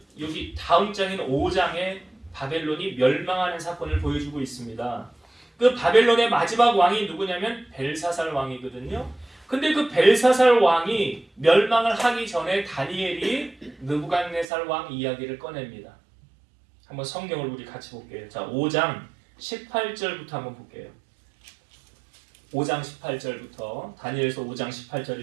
여기 다음 장인 5장에 바벨론이 멸망하는 사건을 보여주고 있습니다. 그 바벨론의 마지막 왕이 누구냐면 벨사살 왕이거든요. 근데 그 벨사살 왕이 멸망을 하기 전에 다니엘이 느부갓네살 왕 이야기를 꺼냅니다. 한번 성경을 우리 같이 볼게요. 자, 5장 18절부터 한번 볼게요. 5장 18절부터 다니엘서 5장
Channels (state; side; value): drops out; left; at 14.5 s